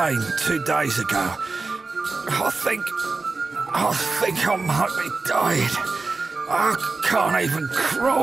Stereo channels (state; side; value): quieter; left; 3.9 dB